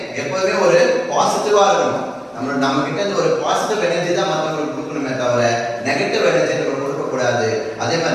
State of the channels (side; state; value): both; identical; correlation 1.00